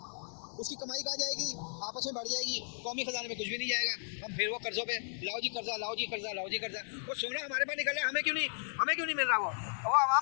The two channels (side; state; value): right; silent; digital silence